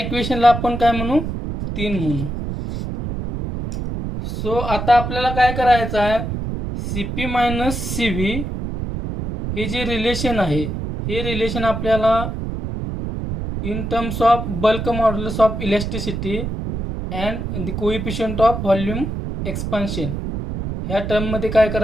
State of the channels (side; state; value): right; noise; rumble, 4 dB below the sound